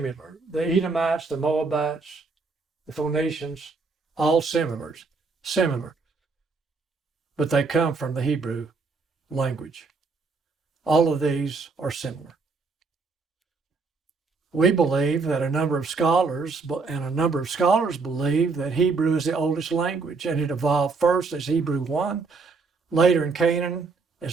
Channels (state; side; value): quieter; left; 4.3 dB